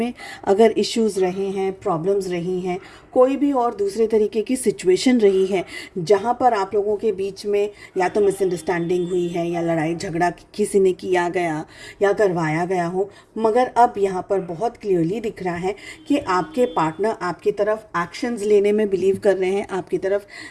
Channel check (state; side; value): identical; both; correlation 1.00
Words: अगर इश्यूज रहे हैं, प्रॉब्लम्स रही हैं, कोई भी और दूसरे तरीके की सिचुएशन रही है जहाँ पर आप लोगों के बीच में या तो मिसअंडरस्टैंडिंग हुई है या लड़ाई झगड़ा किसी ने किया गया या करवाया गया हो, मगर अब यहाँ पर बहुत क्लियरली दिख रहा है कि आपके पार्टनर आपकी तरफ एक्शंस लेने में बिलीव कर रहे हैं, आपकी तरफ